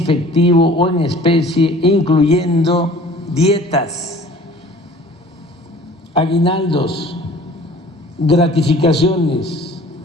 o en especie, incluyendo dietas, aguinaldos, gratificaciones,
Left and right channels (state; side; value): normal; both; correlation 0.48